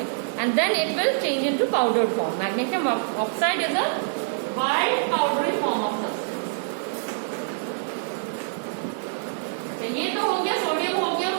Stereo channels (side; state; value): left; silent; digital silence